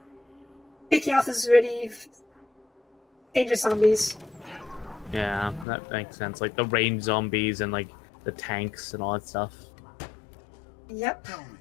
picking off these really dangerous zombies. Yeah, that makes sense. Like the range zombies and like the tanks and all that stuff. Yep. Tell me.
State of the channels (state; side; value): drops out; right; at 5.7 s